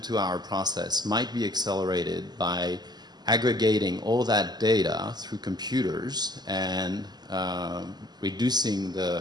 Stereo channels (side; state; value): left; late; 0.20 ms